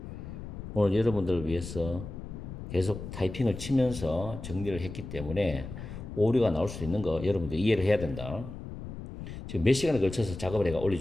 오늘 여러분들을 위해서 계속 타이핑을 치면서 정리를 했기 때문에 오류가 나올 수 있는 거 여러분들 이해를 해야 된다. 지금 몇 시간에 걸쳐서 작업을 해가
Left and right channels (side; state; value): left; noise; rumble, 10 dB below the sound